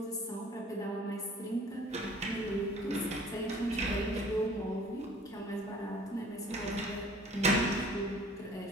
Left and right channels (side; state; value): both; normal; correlation 0.51